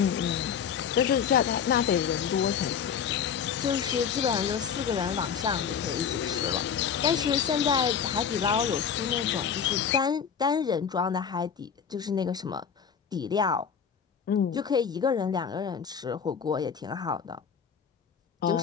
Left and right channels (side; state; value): right; quieter; 7.2 dB